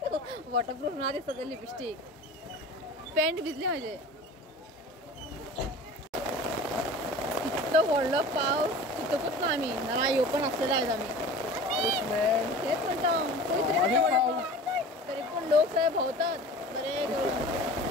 वॉटरप्रूफ ना दिसत लिपस्टिक। पॅन्ट भिजले माझे। इतकं व्हडलं पाऊस तिथं कुठं आम्ही ना येऊ पण असलेला आहेत आम्ही। पाऊस मॅन. तेच म्हणतो तो इथे आणि एवढा पाऊस. पाऊस. तरी पण लोक सगळे भोवतात बरे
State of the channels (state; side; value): normal; both; correlation 0.39